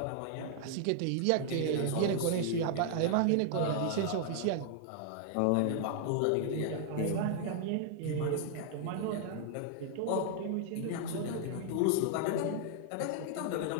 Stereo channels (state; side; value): different; both; correlation -0.01